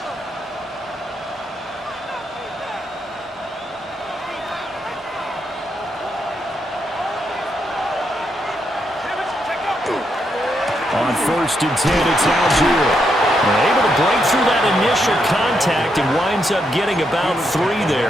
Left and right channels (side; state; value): both; normal; correlation 0.80